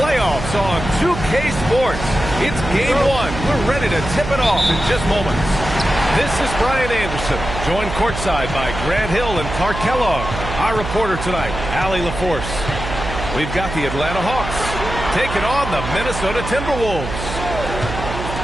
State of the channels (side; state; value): right; noise; hum, 7 dB below the sound